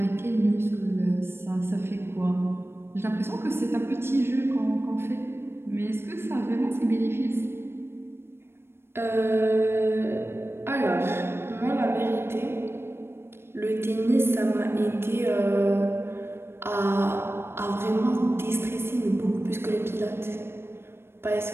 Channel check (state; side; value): late; left; 0.12 ms